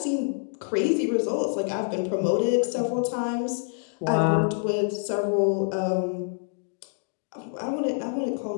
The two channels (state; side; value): silent; right; digital silence